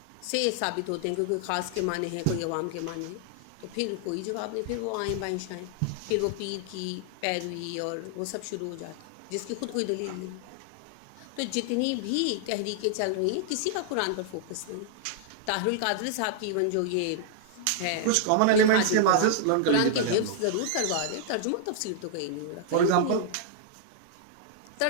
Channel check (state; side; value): different; both; correlation -0.01